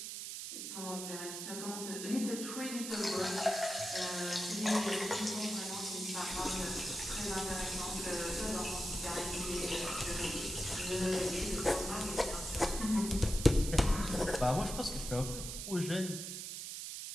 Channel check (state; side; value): noise; right; hiss, 6 dB below the sound